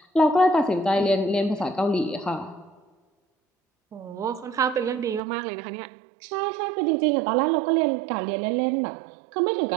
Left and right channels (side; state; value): left; drops out; at 5.2 s